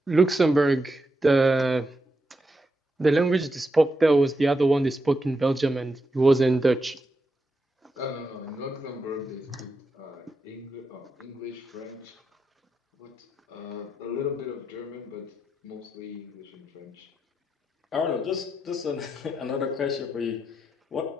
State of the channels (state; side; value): normal; both; correlation 0.85